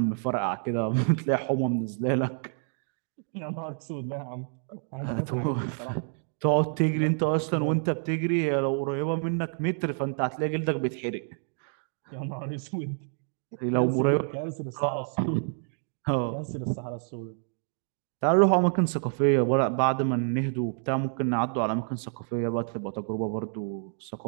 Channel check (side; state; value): left; silent; 59 dB below the other